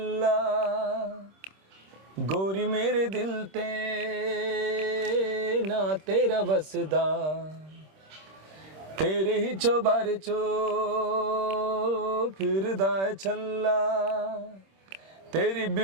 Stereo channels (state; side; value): late; left; 26 ms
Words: गोरी मेरे दिल ते ना तेरा बसदा, तेरे ही चौबारे चो फिरदा है छल्ला, तेरी